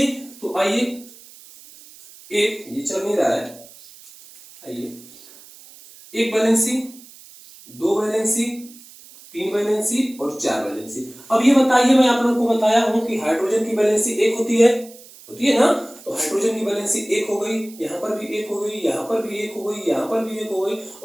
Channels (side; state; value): right; noise; hiss, 21 dB below the sound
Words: तो आइए, एक ये चल नहीं रहा है, आइए, 1 वैलेंसी, 2 वैलेंसी, 3 वैलेंसी और 4 वैलेंसी। अब ये बताइए, मैं आप लोगों को बताया हूं कि हाइड्रोजन की वैलेंसी 1 होती है ना। तो हाइड्रोजन की वैलेंसी 1 हो गई, यहाँ पर भी 1 हो गई, यहाँ पर भी 1 हो गई, यहाँ पर भी 1 हो गई,